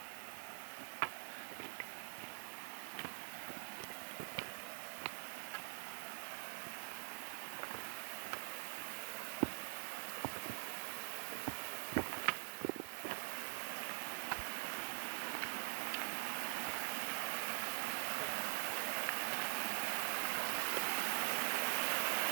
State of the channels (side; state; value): left; silent; digital silence